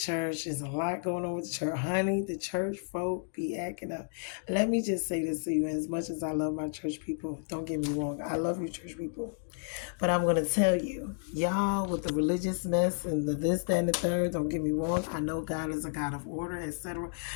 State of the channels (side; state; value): right; silent; digital silence